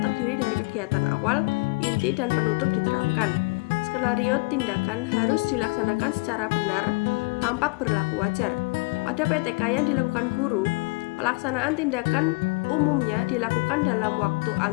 terdiri dari kegiatan awal, inti, dan penutup diterapkan. Skenario tindakan harus dilaksanakan secara benar, tampak berlaku wajar. Pada PTK yang dilakukan guru, pelaksanaan tindakan umumnya dilakukan dalam waktu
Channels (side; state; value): right; quieter; 29.5 dB